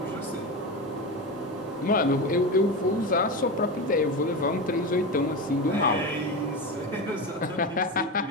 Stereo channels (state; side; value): normal; both; correlation 0.21